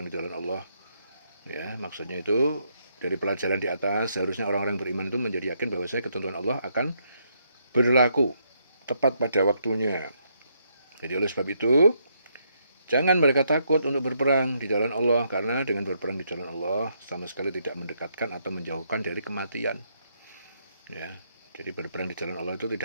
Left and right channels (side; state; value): both; inverted; correlation -0.75